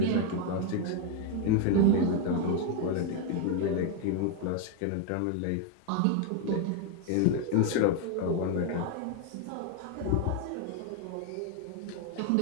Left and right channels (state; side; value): different; both; correlation 0.01